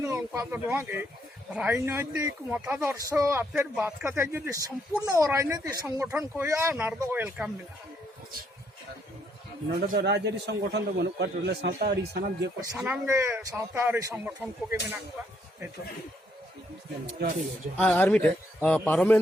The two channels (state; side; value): normal; both; correlation 0.72